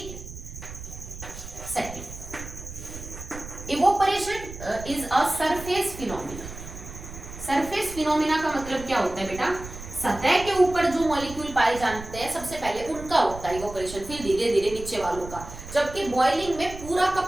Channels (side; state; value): right; noise; rumble, 12 dB below the sound